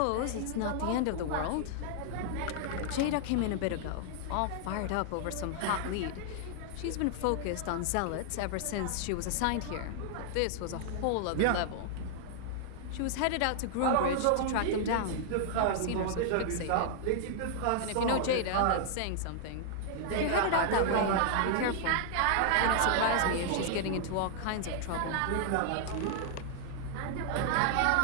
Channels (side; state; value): both; different; correlation -0.01